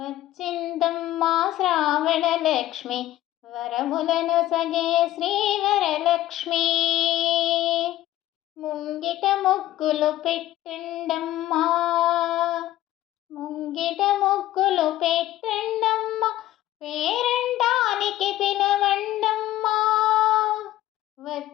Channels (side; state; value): right; quieter; 14.4 dB